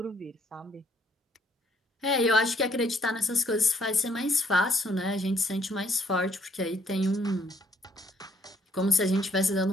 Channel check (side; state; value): both; normal; correlation 0.66